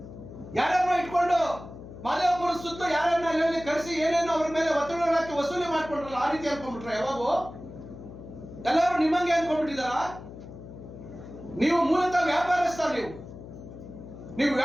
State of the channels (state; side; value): noise; left; hum, 14 dB below the sound